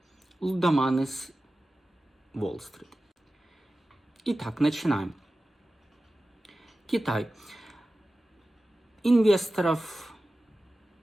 Лудоманы с Уолл-стрит. Итак, начинаем. Китай. Инвесторов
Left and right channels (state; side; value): normal; both; correlation 0.95